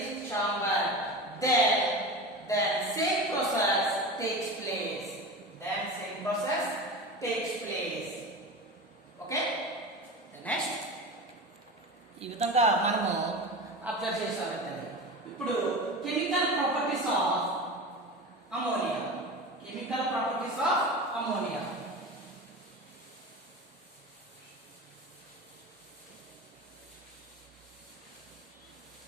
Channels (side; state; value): both; normal; correlation 0.29